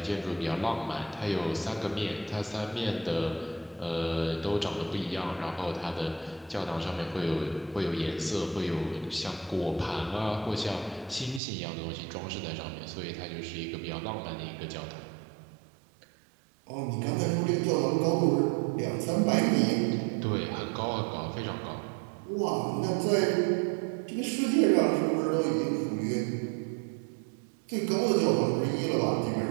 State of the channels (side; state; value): left; drops out; at 11.4 s